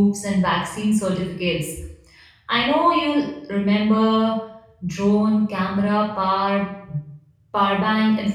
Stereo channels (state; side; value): identical; both; correlation 1.00